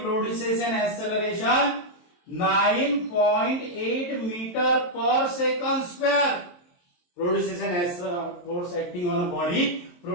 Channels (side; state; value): right; late; 23 ms